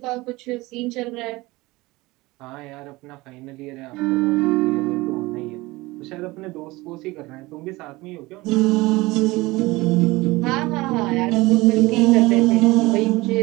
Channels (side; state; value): left; quieter; 21.2 dB